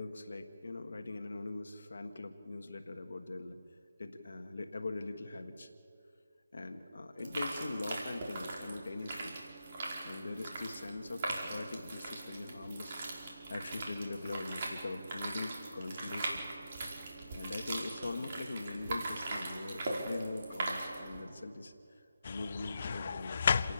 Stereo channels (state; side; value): inverted; both; correlation -0.87